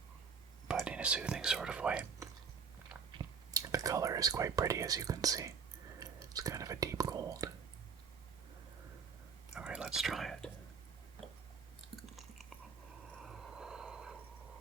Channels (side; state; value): left; quieter; 6.0 dB